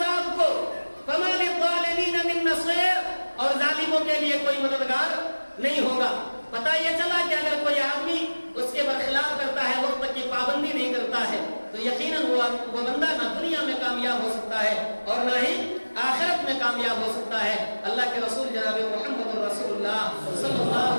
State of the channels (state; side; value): inverted; both; correlation -1.00